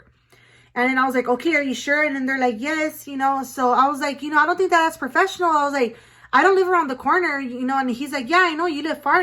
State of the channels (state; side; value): identical; both; correlation 1.00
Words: And then I was like, okay, are you sure? And then they're like, yes, you know. So I was like, you know, I don't think that's professional. I was like, I don't live around the corner, you know. And he's like, yeah, I know you live far.